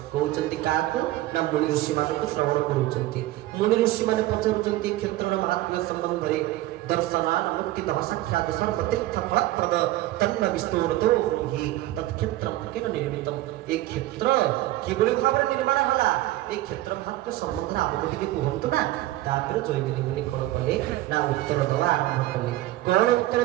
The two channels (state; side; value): quieter; left; 16.3 dB